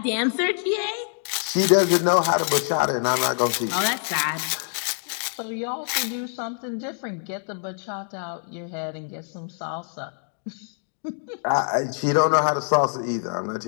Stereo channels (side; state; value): right; silent; 60 dB below the other